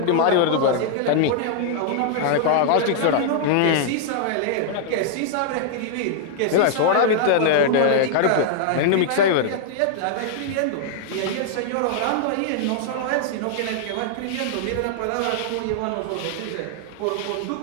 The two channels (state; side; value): different; both; correlation -0.01